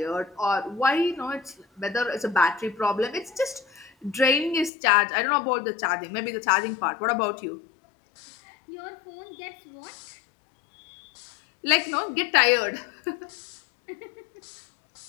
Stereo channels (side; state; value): right; drops out; at 4.7 s